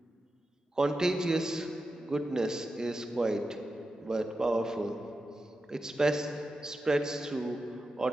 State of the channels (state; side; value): normal; both; correlation 0.90